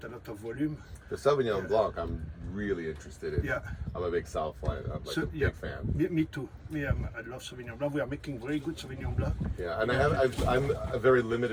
a lot of volume. The Sauvignon Blanc, I'm really interested in. Yeah. I'm a big South fan. I'm like a big fan. Me too. I love Sauvignon Blanc. We are making very good Sauvignon Blanc. Yeah, and I'm a very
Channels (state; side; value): identical; both; correlation 1.00